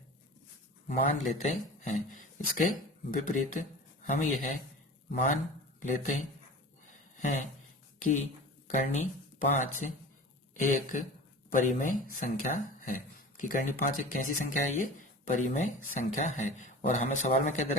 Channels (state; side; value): normal; both; correlation 0.37